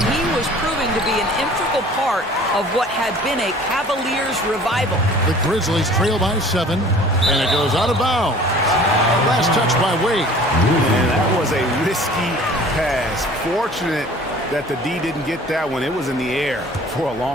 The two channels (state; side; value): normal; both; correlation 0.48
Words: he was proving to be an integral part of what had been a Cavaliers revival. The Grizzlies trail by 7, and it goes out of bounds. Last touch by Wade. And that was a risky pass. Fortunate that the D didn't get that one. It was in the air for a